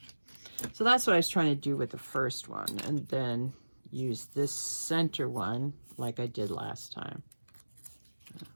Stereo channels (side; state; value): both; inverted; correlation -1.00